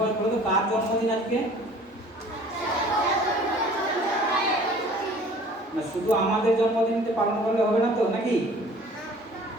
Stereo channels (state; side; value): normal; both; correlation 0.50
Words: কার জন্মদিন আজকে? না, শুধু আমাদের জন্মদিনতে পালন করলে হবে না তো, নাকি?